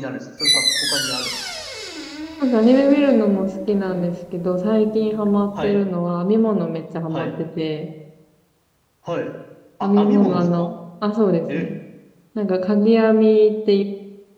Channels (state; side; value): identical; both; correlation 1.00